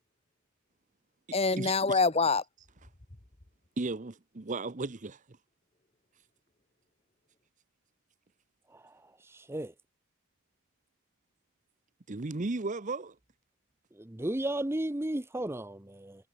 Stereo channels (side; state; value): both; normal; correlation 0.19